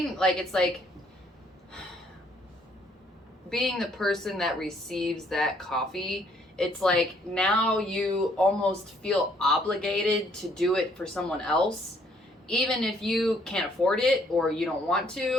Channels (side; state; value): both; normal; correlation 0.66